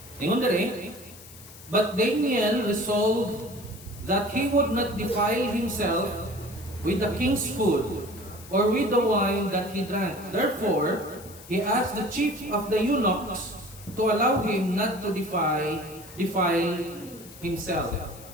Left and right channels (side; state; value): left; noise; hiss, 19 dB below the sound